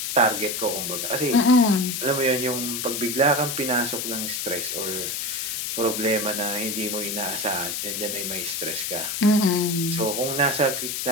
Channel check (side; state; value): left; noise; hiss, 3 dB below the sound